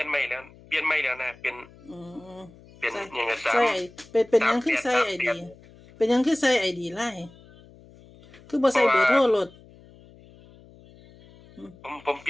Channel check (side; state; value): left; noise; hum, 24 dB below the sound